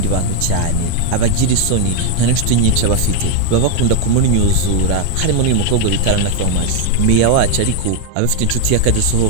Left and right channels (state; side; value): different; both; correlation 0.01